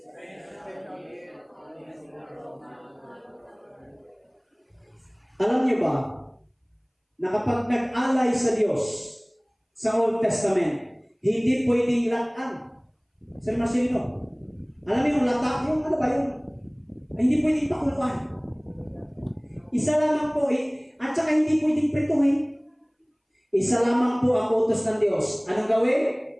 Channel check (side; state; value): both; identical; correlation 1.00